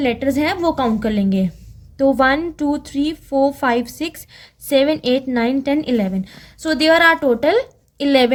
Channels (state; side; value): identical; both; correlation 1.00